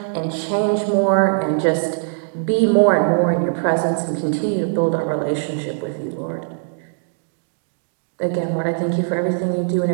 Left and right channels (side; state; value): left; silent; digital silence